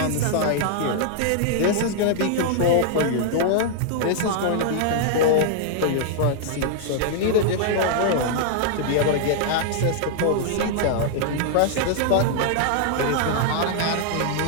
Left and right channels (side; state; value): both; different; correlation -0.01